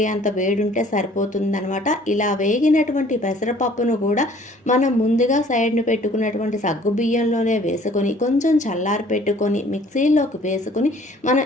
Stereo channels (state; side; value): normal; both; correlation 0.55